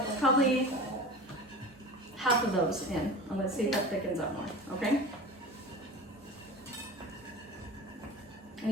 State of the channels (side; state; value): both; normal; correlation 0.34